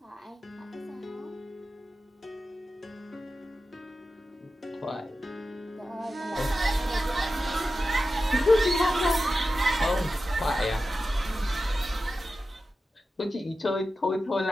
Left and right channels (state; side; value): normal; both; correlation 0.92